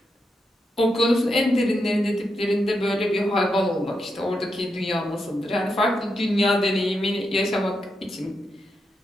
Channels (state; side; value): normal; both; correlation 0.85